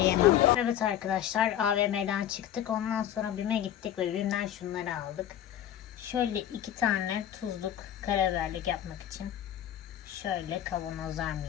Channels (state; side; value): quieter; right; 10.9 dB